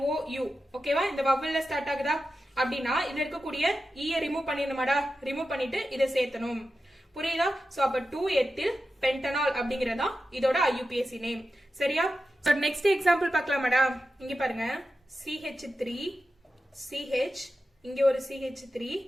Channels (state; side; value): normal; both; correlation 0.92